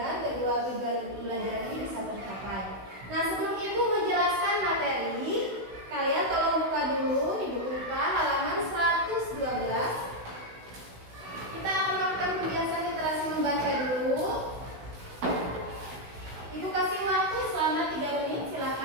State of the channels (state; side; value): late; left; 16 ms